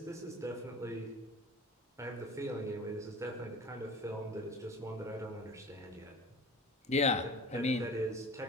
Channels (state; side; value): normal; both; correlation 0.39